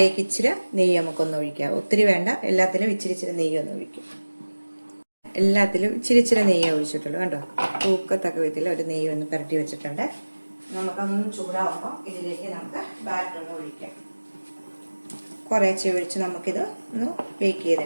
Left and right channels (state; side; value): inverted; both; correlation -1.00